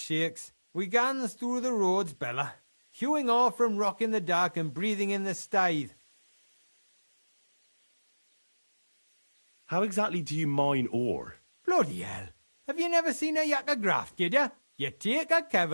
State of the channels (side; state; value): both; inverted; correlation -1.00